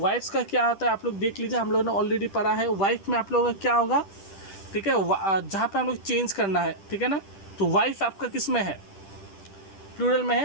का क्या होता है आप लोग देख लीजिए, हम लोगों ने ऑलरेडी पढ़ा है। वाइफ में आप लोगों का क्या होगा, ठीक है, जहाँ पे हम लोग चेंज करना है, ठीक है ना। तो वाइफ आपका किस में है, प्लूरल में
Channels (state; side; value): late; right; 10 ms